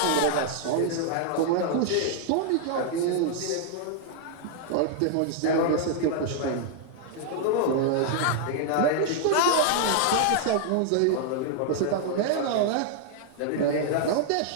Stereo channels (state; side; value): different; both; correlation 0.00